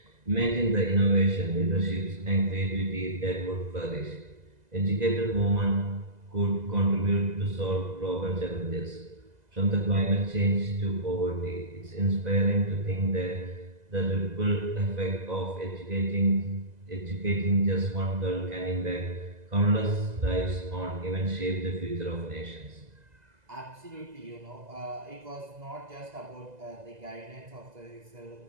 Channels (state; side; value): late; left; 2.0 ms